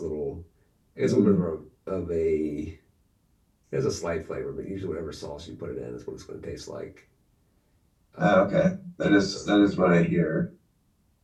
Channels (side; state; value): both; identical; correlation 1.00